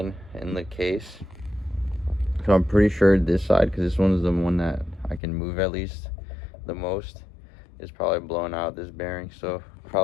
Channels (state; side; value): drops out; right; at 5.2 s